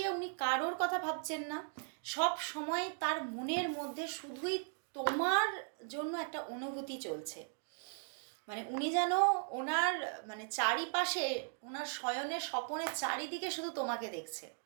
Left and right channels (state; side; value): silent; left; 53 dB below the other